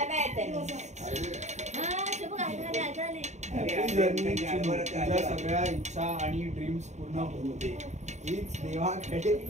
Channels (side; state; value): left; late; 0.34 ms